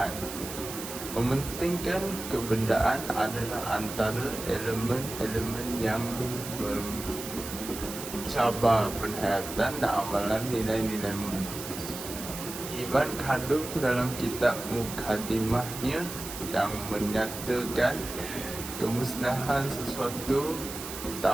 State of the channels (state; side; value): noise; right; hiss, 9 dB below the sound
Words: Mementingkan kebendaan adalah antara elemen-elemen yang mencabar penghayatan dan amalan nilai-nilai murni. Ibn Khaldun dalam kitab Mukaddimahnya yang menyatakan kemusnahan sesuatu